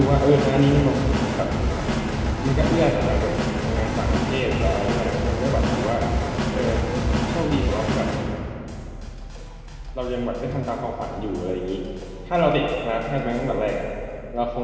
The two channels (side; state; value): both; identical; correlation 1.00